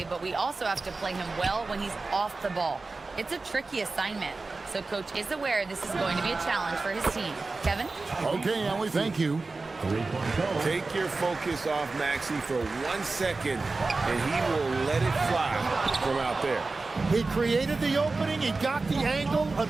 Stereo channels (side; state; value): left; quieter; 3.7 dB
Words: but we also have to play him well when he's off the ball. It's a tricky assignment, so Coach is aware this is going to be a challenge for his team. Kevin? Okay, Allie, thank you. Take your focus off Maxey for 1 second, and he will let it fly from out there. He created the opening. He got the angle.